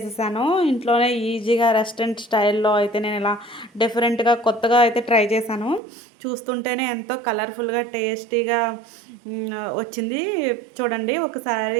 ఇంట్లోనే ఈజీగా రెస్టారెంట్ స్టైల్‌లో అయితే నేనిలా డిఫరెంట్‌గా కొత్తగా అయితే ట్రై చేశాను. చూస్తుంటేనే ఎంతో కలర్‌ఫుల్‌గా, టేస్టీగా వచ్చింది. చూడండి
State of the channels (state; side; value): drops out; left; at 5.8 s